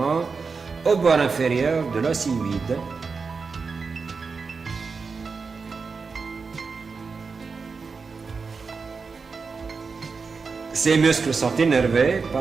au bord inférieur de l'os hyoïde. Ces muscles sont innervés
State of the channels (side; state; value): left; quieter; 4.9 dB